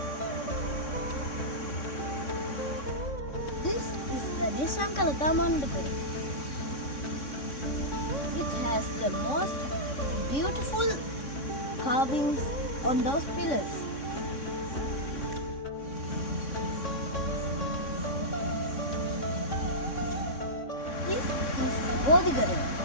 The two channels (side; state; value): right; late; 3.6 ms